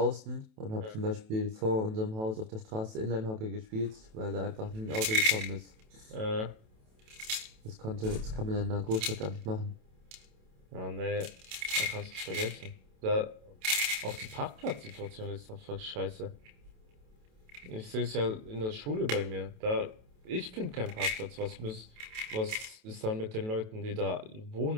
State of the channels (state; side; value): late; left; 28 ms